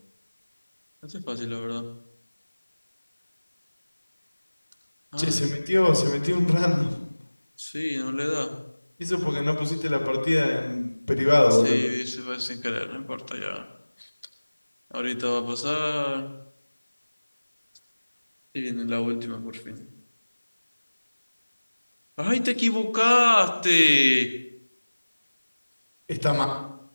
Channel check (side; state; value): both; inverted; correlation -1.00